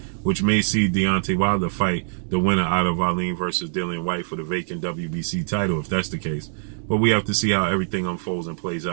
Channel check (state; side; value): silent; left; digital silence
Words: which may see Deontay Wilder fight the winner out of Wallin versus Dillian White for the vacant WBC title, if that's the case. But we have to see how everything unfolds and plays